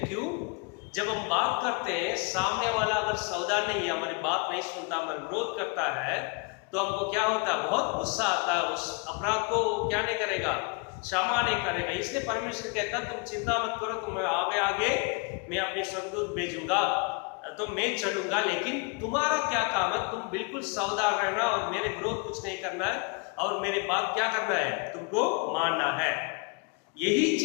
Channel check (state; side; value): quieter; right; 32.7 dB